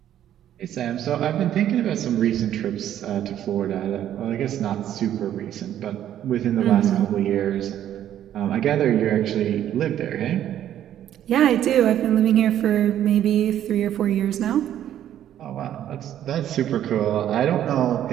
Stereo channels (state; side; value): quieter; left; 11.2 dB